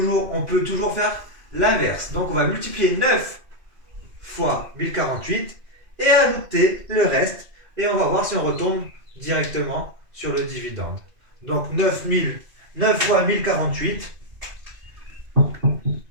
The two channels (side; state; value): left; late; 2.5 ms